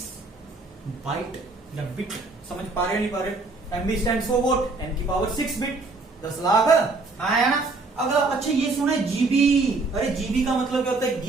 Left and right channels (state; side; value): quieter; left; 3.6 dB